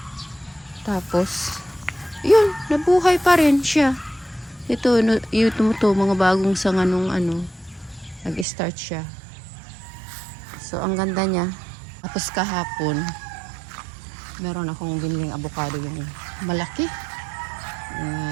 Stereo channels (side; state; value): left; drops out; at 8.5 s